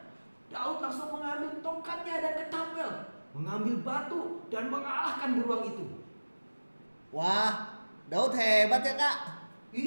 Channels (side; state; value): both; inverted; correlation -1.00